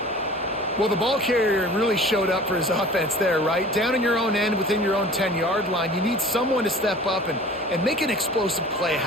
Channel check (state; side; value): normal; both; correlation 0.44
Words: Well, the ball carrier really showed up for his offense there, right? Down in your own end, within your own 10-yard line, you need someone to step up and make an explosive play